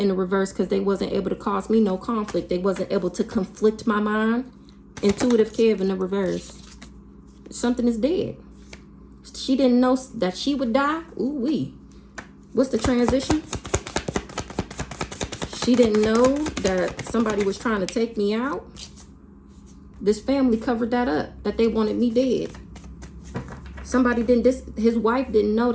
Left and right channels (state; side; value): identical; both; correlation 1.00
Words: the reverse because they wasn't able to cause me no conflict. They wasn't able to conflict my mind. Intuitive Kev in the reverse. Something is dead. She didn't know that she would die. Ooh wee. What's the transition? She didn't know that somebody was trying to take me out. This family covered that up, that they wanted me dead. Somebody didn't, his wife didn't know